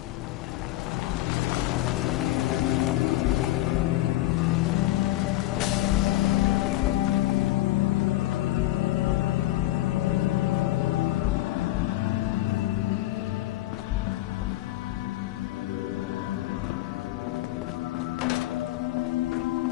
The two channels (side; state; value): right; quieter; 16.2 dB